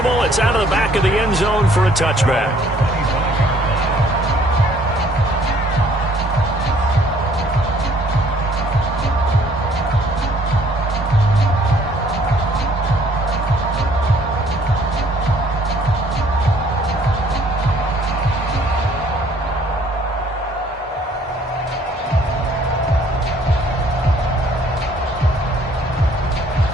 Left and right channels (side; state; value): both; normal; correlation 0.60